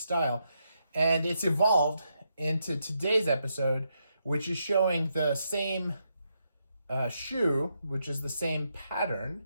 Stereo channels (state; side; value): inverted; both; correlation -0.80